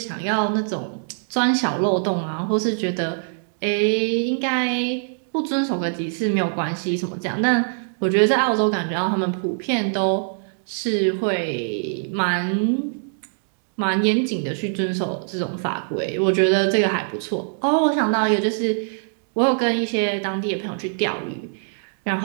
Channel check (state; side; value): silent; left; digital silence